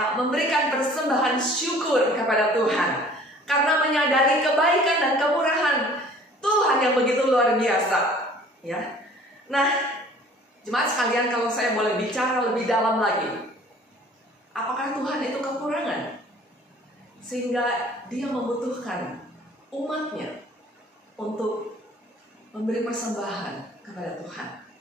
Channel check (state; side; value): normal; both; correlation 0.51